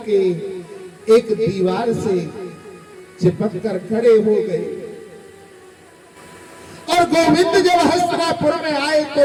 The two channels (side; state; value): both; identical; correlation 1.00